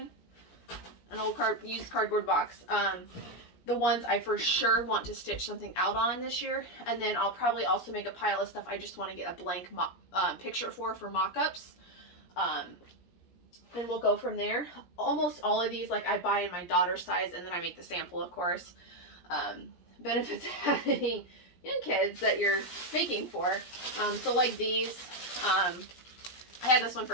an old used cardboard box. The ones I for sure want to stitch something out on this year, and then I'll probably also make a pile of stuff I just want to get a blank picture for mock-ups. And we'll go from there. Almost all of these, like, I buy in my daughter's size, and then I make the sample, of course. Benefits of having young kids that you're making for. So like these, I had this one for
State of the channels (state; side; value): late; right; 17 ms